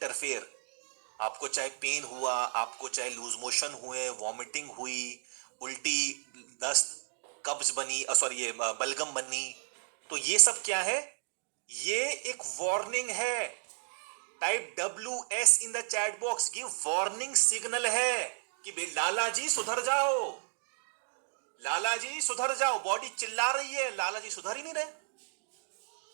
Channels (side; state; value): left; silent; digital silence